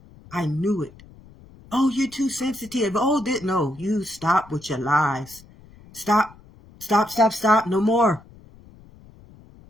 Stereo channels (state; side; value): noise; left; rumble, 24 dB below the sound